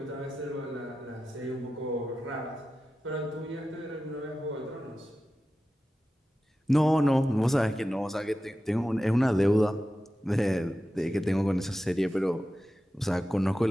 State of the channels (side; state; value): both; normal; correlation 0.93